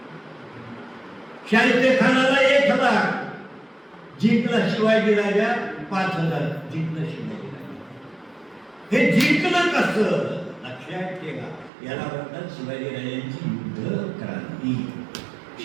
शाहिस्ते खानाला 1,000, जिंकला शिवाजीराजा 5,000, जिंकलं शिवाजीराजा. हे जिंकलं कसं? लक्षात ठेवा, याला म्हणतात शिवाजीराजांची युद्ध क्रांती.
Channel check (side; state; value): left; drops out; at 11.7 s